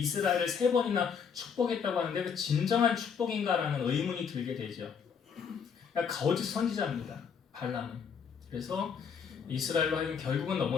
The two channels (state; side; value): quieter; right; 6.7 dB